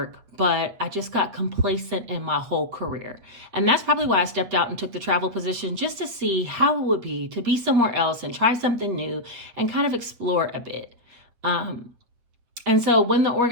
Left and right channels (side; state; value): left; late; 8.5 ms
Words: but I just got complacent in my whole career. And that's probably why I stepped out and took the travel position, just to see how it would be to be somewhere else and try something new and kind of explore a bit. And so when the